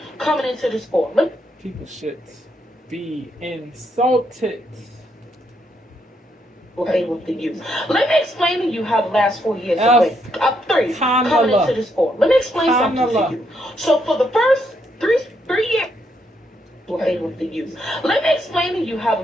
coming into this four. People should be insulted. Favor for you. Let me explain to you how the last 4 years have went. Up three, coming into this four. Let me explain something to you. So for the first three years, favor for you. Let me explain to you how the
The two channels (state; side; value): normal; both; correlation 0.76